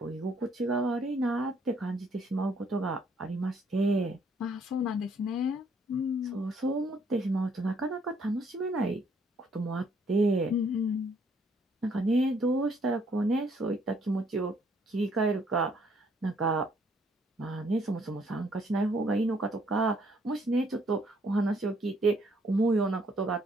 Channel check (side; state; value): both; normal; correlation 0.66